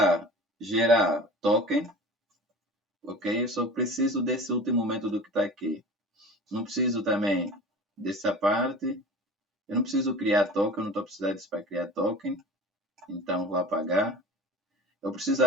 gerar token. Ok? Eu só preciso desse último método que está aqui. Não preciso também dessa parte. Eu não preciso criar token. Eu não estou precisando disso para criar token. Então, vou apagar. Eu preciso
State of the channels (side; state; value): both; normal; correlation 0.38